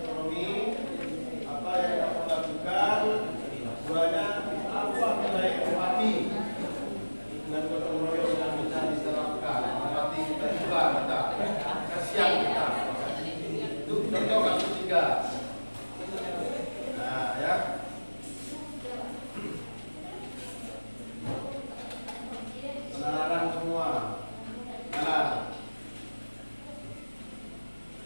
Apa yang kamu lakukan? Keduanya, apa nilai empati dan gotong royong yang bisa diterapkan? Empati kita juga, kita kasihan kita. Itu contoh kasus 3. Nah, ya. Penalaran semua. Nalar.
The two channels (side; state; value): both; inverted; correlation -1.00